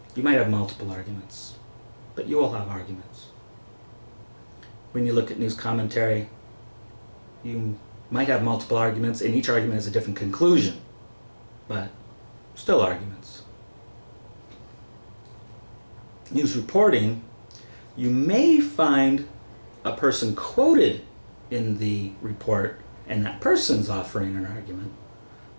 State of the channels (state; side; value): inverted; both; correlation -1.00